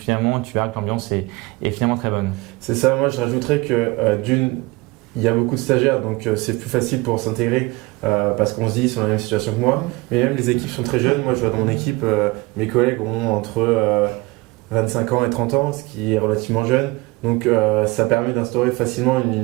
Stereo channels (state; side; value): quieter; left; 23.1 dB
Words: tu verras que l'ambiance est finalement très bonne. C'est ça. Moi, je rajouterais que il y a beaucoup de stagiaires, donc c'est plus facile pour s'intégrer parce qu'on se dit ils sont dans la même situation que moi. Mais même les équipes sont très jeunes. Moi, je vois dans mon équipe, mes collègues ont entre 25 ans et 30 ans, ce qui est relativement jeune. Donc ça permet d'instaurer facilement